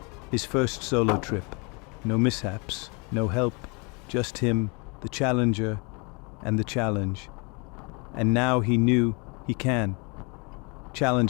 His first solo trip. No mishaps, no help, just him, the challenger, and the challenge. And now he knew he can.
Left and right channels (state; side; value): quieter; right; 31.2 dB